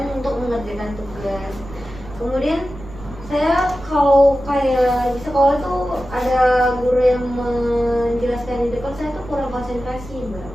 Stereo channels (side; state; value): right; noise; rumble, 16 dB below the sound